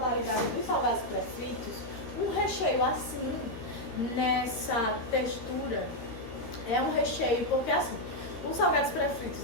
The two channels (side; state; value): right; late; 13 ms